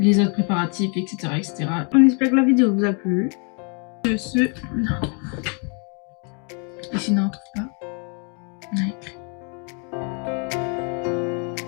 autres préparatifs, etc. etc. On espère que la vidéo vous a plu. De ce... Et sinon, on trouve pas. On a écrit.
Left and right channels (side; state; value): right; quieter; 38.0 dB